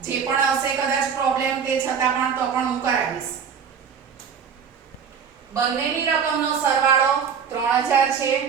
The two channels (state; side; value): quieter; left; 6.9 dB